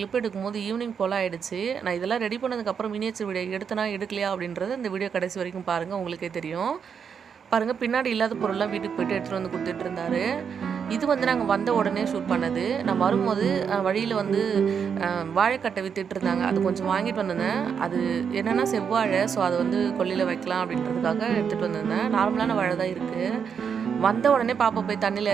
எடுக்கும்போது ஈவினிங் போல ஆயிடுச்சு. நான் இதெல்லாம் ரெடி பண்ணதுக்கு அப்புறம் மினியேச்சர் வீடியோ எடுத்தனா எடுக்கலையா அப்படின்றது இந்த வீடியோ கடைசி வரைக்கும் பாருங்க உங்களுக்கே தெரியும். பாருங்க பின்னாடி இல்லாத பொருள்லாம் வீட்டுக்கு போயிட்டு எடுத்துட்டு வந்து கொடுத்துட்டு இருந்தாரு. இது வந்து நாங்கள் வந்த உடனே ஷூட் பண்ணது. நான் வரும்போது வழியில் வந்து வாழைக்கட்டை வித்துட்டு இருந்தாங்க. அது கொஞ்சம் வாங்கிட்டு வந்திருந்தேன். அது என்னென்னா செவ்வாழை, ஸோ அதை வந்து கொல்லையில் வைக்கலாம் அப்படின்றதுக்காக எடுத்துகிட்டு வந்திருந்தேன். நார்மலான வாழை தான் இருக்குது. வந்த உடனே பாப்பா போய் தண்ணியில்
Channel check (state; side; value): quieter; left; 6.9 dB